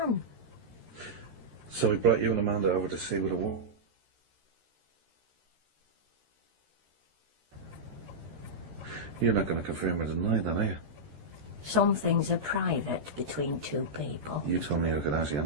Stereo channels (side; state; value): left; late; 13 ms